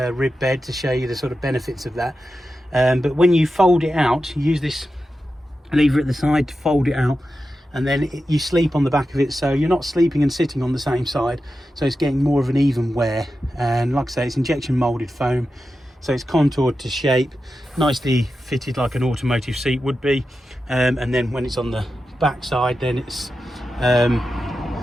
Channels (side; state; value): both; normal; correlation 0.91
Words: bed to show you the sort of benefits of that, but when you fold it out, you use this lever at the side to fold it out, and then you sleep on the back of it, so you're not sleeping and sitting on the same side, so it's getting more of an even wear. And like I say, it's injection molded foam, so it's contoured to shape, nicely fitted like an automotive seat would be. And then when it's on the back side, then it's